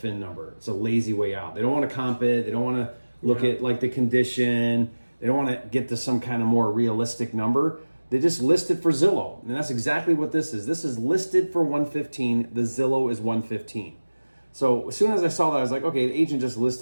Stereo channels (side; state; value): both; inverted; correlation -1.00